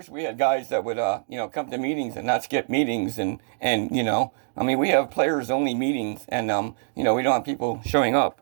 we had guys that would, come to meetings and not skip meetings. And we have players only meetings and, we don't have people showing up.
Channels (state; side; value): silent; left; digital silence